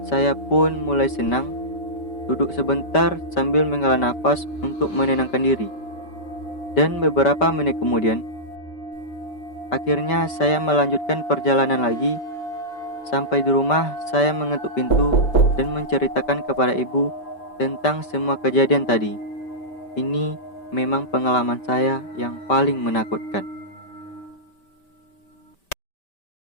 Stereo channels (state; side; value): late; right; 5.1 ms